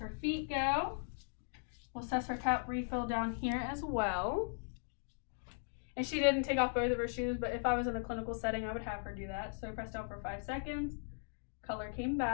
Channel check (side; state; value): right; silent; digital silence